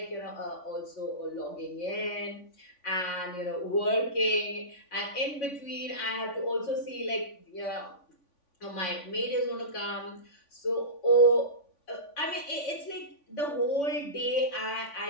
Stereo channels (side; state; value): right; late; 3.5 ms